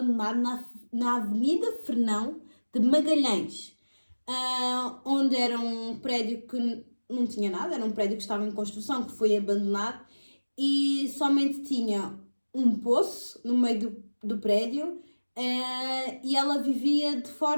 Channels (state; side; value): inverted; both; correlation -1.00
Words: na Avenida Fernão de Magalhães, onde era um prédio que não tinha nada, era um prédio que estava em construção, que foi abandonado e somente tinha um poço no meio do prédio. E ela vivia de